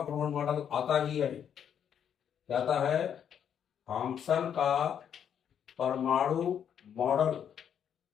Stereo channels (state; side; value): quieter; right; 8.6 dB